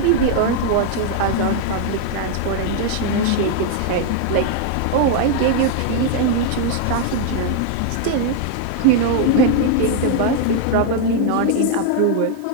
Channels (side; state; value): both; different; correlation 0.00